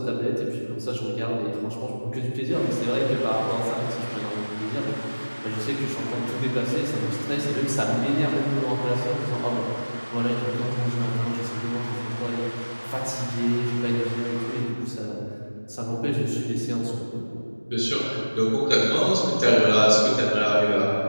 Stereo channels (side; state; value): both; inverted; correlation -1.00